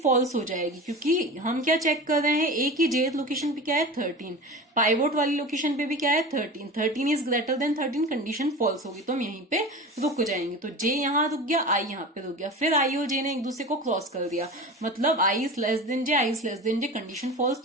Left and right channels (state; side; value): normal; both; correlation 0.32